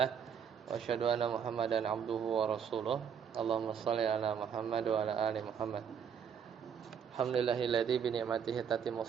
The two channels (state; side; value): quieter; left; 7.5 dB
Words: wa asyhadu anna Muhammadan abduhu wa rasuluh. Allahumma shalli ala Muhammad wa ala ali Muhammad. Alhamdulillahilladzi bi ni'matihi